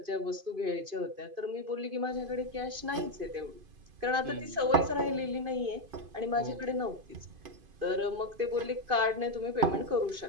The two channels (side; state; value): left; late; 2.5 ms